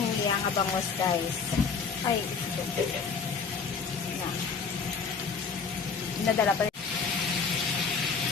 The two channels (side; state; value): right; quieter; 5.5 dB